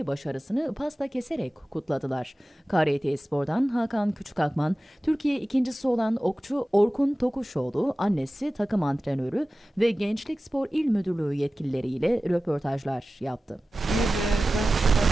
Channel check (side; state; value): both; normal; correlation 0.96